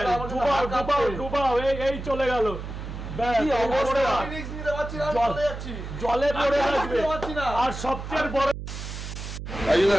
এই চলে গেল, জলে পড়ে আসবে। আর সবচেয়ে বড়, রাজুদা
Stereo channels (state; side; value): noise; right; hum, 8 dB below the sound